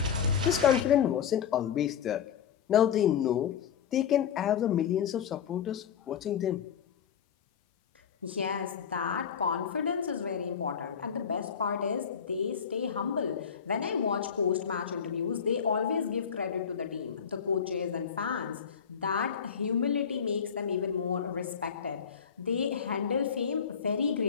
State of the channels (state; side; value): quieter; right; 7.5 dB